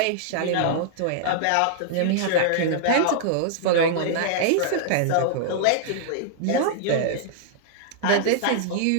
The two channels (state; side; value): different; both; correlation -0.01